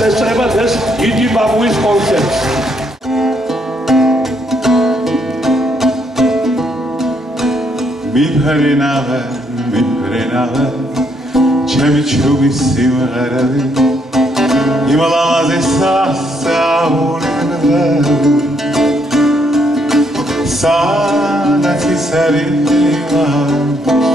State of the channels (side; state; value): both; normal; correlation 0.73